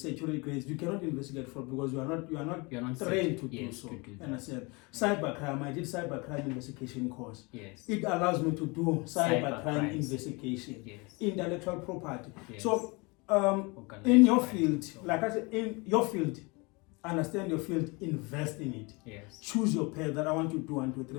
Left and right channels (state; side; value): quieter; right; 27.5 dB